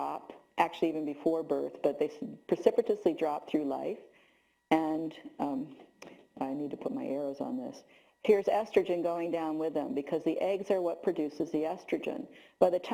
actually even before birth, but they precipitously drop through life. And I need to put my arrows on this. Here's estrogen going down with them because the eggs are what produces the estrogen. By the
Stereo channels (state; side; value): identical; both; correlation 1.00